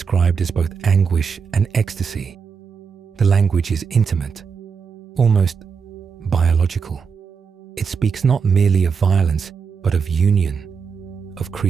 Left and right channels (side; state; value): left; quieter; 5.9 dB